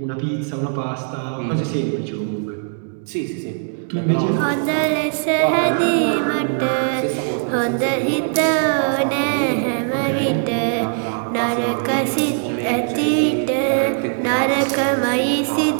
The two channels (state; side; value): silent; left; digital silence